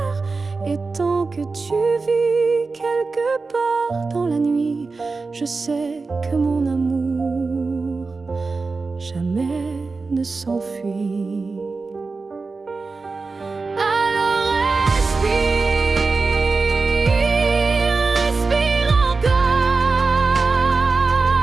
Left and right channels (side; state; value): left; quieter; 4.1 dB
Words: Et tant que tu vis quelque part dans la nuit, je sais que mon amour jamais ne s'enfuit. Alors respire encore.